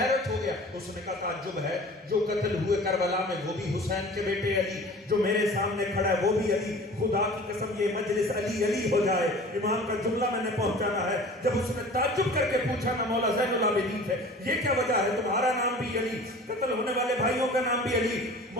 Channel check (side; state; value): both; normal; correlation 0.43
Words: ہو گیا. اس نے کہا تعجب ہے, جو قتل ہوئے کربلا میں وہ بھی حسین کے بیٹے علی, جو میرے سامنے کھڑا ہے وہ بھی علی. خدا کی قسم یہ مجلس علی علی ہو جائے. امام کا جملہ میں نے پہنچانا ہے. جب اس نے تعجب کر کے پوچھا نا مولا زین العابدین سے, یہ کیا وجہ ہے تمہارا نام بھی علی, قتل ہونے والے بھائیوں کا نام بھی علی؟